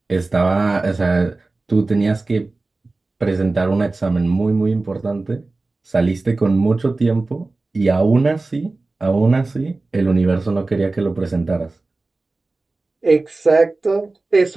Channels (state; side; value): quieter; left; 3.3 dB